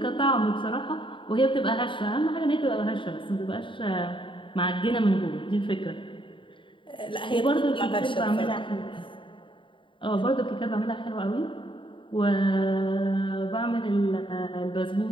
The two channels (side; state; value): right; late; 0.25 ms